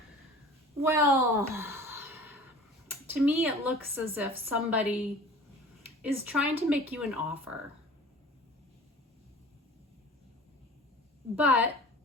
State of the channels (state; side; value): normal; both; correlation 0.43